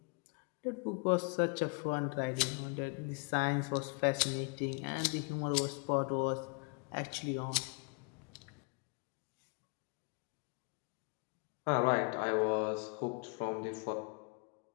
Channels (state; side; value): quieter; right; 35.8 dB